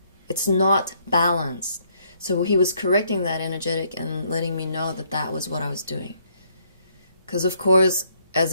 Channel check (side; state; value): both; inverted; correlation -0.69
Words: it's not balanced. So he was correcting that energetic and letting me know that that was what I was doing. Because of course, as